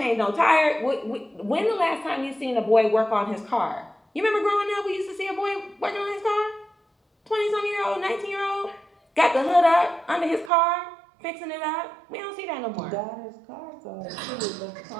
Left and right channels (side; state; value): left; drops out; at 10.5 s